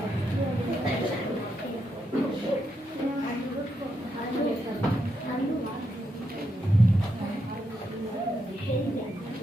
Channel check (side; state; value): both; normal; correlation 0.81